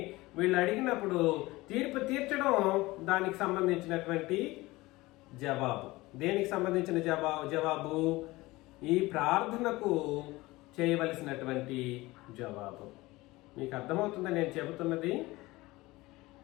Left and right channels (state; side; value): quieter; right; 20.2 dB